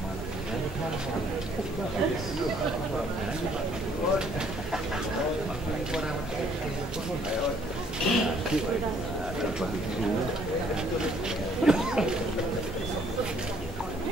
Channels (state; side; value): normal; both; correlation 0.63